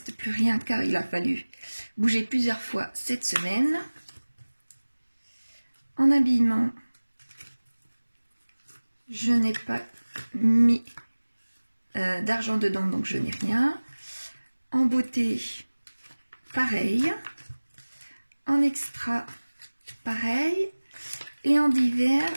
plus rien car il a fallu bouger plusieurs fois cette semaine. En habillement, je n'ai pas mis d'argent dedans, donc je n'ai rien. En beauté, pareil. En extra, pareil. Et en divers,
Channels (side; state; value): both; inverted; correlation -1.00